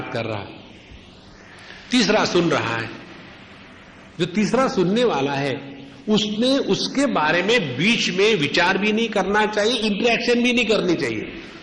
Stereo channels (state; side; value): identical; both; correlation 1.00